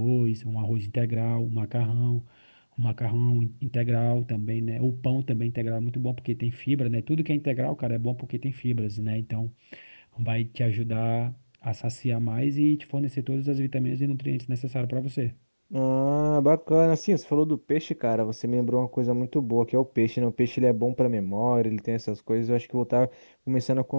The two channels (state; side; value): inverted; both; correlation -1.00